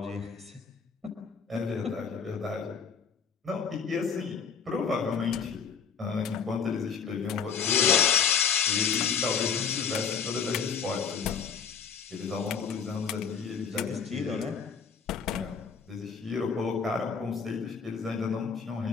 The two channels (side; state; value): right; quieter; 6.4 dB